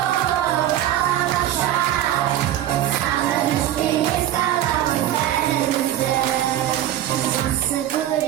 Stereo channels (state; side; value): quieter; left; 12.4 dB